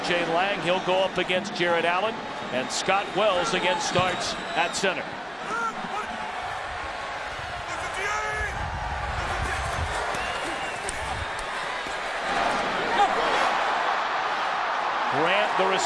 Lang. He'll go up against Jared Allen. And Scott Wells again starts at center. Grant, the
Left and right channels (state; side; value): identical; both; correlation 1.00